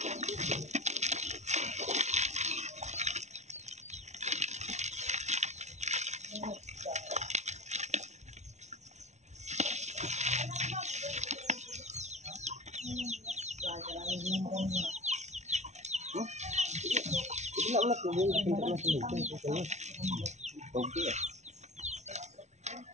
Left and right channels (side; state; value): left; late; 0.33 ms